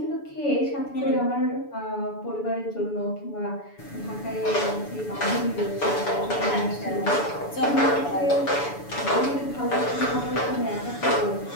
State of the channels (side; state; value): right; late; 6.9 ms